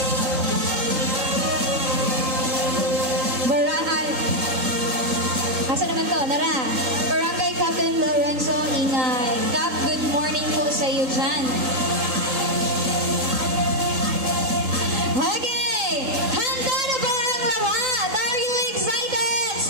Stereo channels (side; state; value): left; late; 3.7 ms